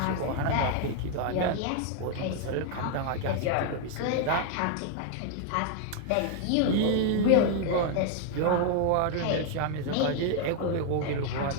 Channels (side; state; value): both; different; correlation 0.00